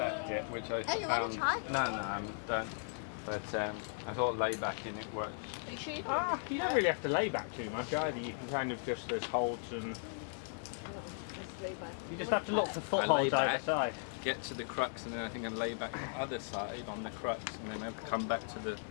it, which I found. No, I don't. But I thought laybacking it works. You don't really have to lay back too much either. You can kind of just, there's holds and you just have to look for footholds either side. Get to the crux, and then I think I lay back the other side on the crux, and then I come back to the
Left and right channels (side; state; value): right; silent; 53 dB below the other